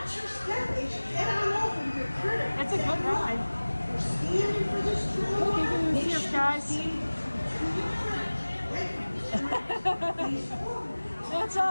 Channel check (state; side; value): inverted; both; correlation -1.00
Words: your step as you head on over to your critter. It's a good ride. We're standing for this train. Okay, good to see us, guys. That's